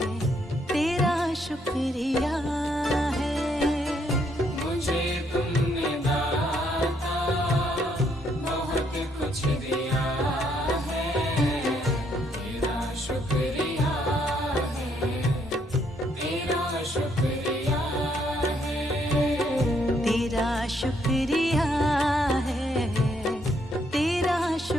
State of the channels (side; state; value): both; normal; correlation 0.71